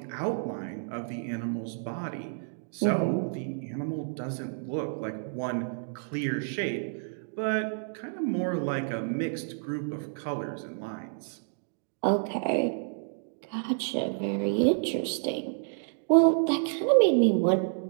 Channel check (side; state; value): left; silent; digital silence